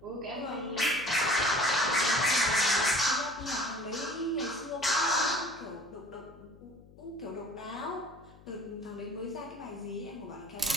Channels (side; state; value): left; noise; hum, 22 dB below the sound